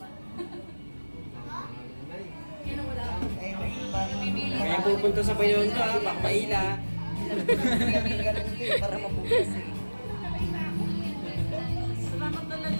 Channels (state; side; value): inverted; both; correlation -1.00